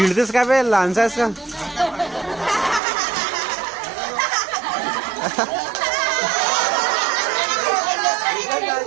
का बे लहानसा आहेस का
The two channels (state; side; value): drops out; left; at 2.8 s